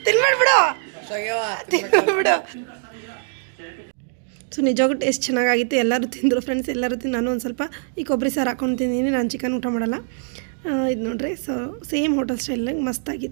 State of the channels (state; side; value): silent; left; digital silence